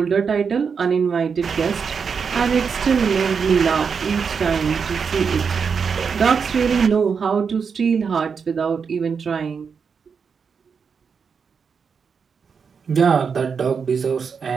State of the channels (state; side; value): quieter; left; 6.0 dB